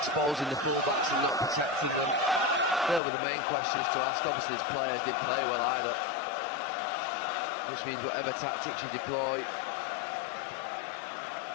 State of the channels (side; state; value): right; drops out; at 3.0 s